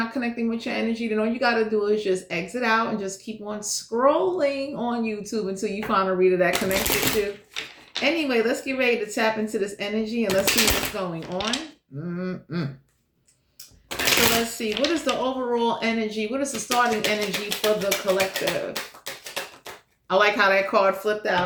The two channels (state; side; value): identical; both; correlation 1.00